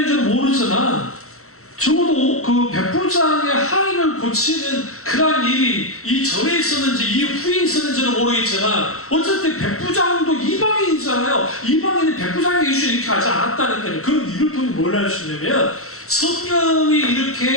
모르지만 적어도 그 백부장의 하인을 고치는 그러한 일이 이 전에 있었는지 이 후에 있었는지는 모르겠지만 어쨌든 백부장도 이방인이잖아요. 이방인이 백부장의 이슈를 이렇게 하지 않았다니까요. 그럼 이를 통해 뭘 할 수 있냐면 성령이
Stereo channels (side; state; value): right; late; 0.63 ms